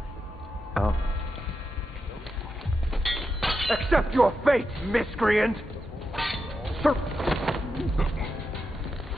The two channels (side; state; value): both; normal; correlation 0.87